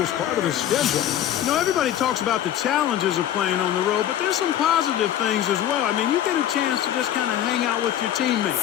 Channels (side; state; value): right; quieter; 11.2 dB